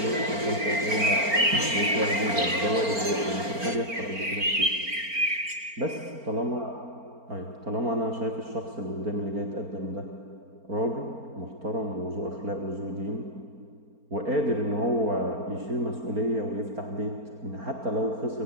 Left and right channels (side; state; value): left; late; 4.4 ms